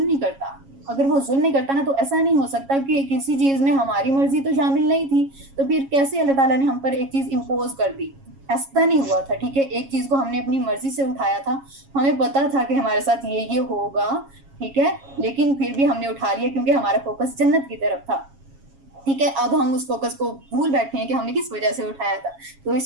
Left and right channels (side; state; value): left; late; 7.3 ms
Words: نہیں کرتا. اگر وہ ظلم نہیں کرتا نا, تو ایسا نہیں ہو سکتا کہ کسی چیز میں ہماری مرضی تو شامل نہیں تھی, تو پھر کیسے اللہ تعالیٰ نے ہم پر ایک چیز امپوز کر دی. ایسا نہیں ہوا تھا, ٹھیک ہے. ایک چیز کو ہم نے اپنی مرضی سے اٹھایا تھا, ہمیں پتا تھا کہ ہمارے ساتھ یہ ہوگا, ٹھیک ہے, لیکن پھر بھی ہم نے اٹھا لیا کیونکہ ہمارا فوکس جنت کی طرف تھا, ٹھیک ہے. اب ہم اس فوکس کو بھول بیٹھے ہیں کہ ہم نے کس وجہ سے اٹھایا تھا, تو